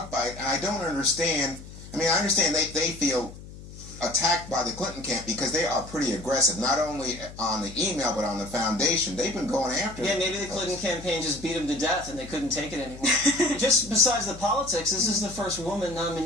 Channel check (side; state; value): left; noise; hum, 15 dB below the sound